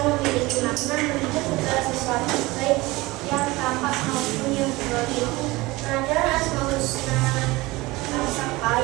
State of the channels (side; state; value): left; quieter; 21.2 dB